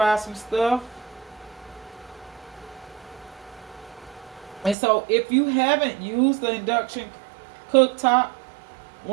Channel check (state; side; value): drops out; left; at 4.8 s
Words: some stuff. And so if you haven't used the induction cooktop,